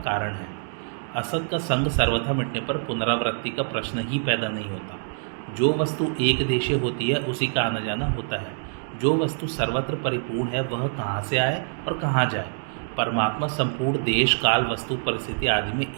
कारण है। असत का संग सर्वथा मिटने पर पुनरावृत्ति का प्रश्न ही पैदा नहीं होता। जो वस्तु एक देशीय होती है उसी का आना जाना होता है। जो वस्तु सर्वत्र परिपूर्ण है वह कहाँ से आए और कहाँ जाए। परमात्मा संपूर्ण देश काल वस्तु परिस्थिति आदि में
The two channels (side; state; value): left; silent; 61 dB below the other